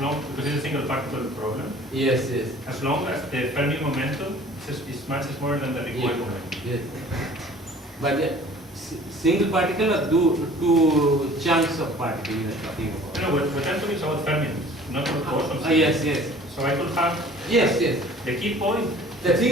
because it's a single particle problem. Yes, yes. As long as the Fermi momentum is much smaller than the recoil momentum. Yes. But the single particle or two chunks of particle you are talking about? No, what I'm talking is about fermions, not about bosons. Yes, yes. So I could have. Yes, yes. The key point. The thing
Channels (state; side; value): normal; both; correlation 0.49